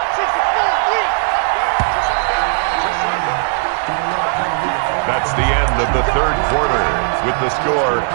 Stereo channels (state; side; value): silent; left; digital silence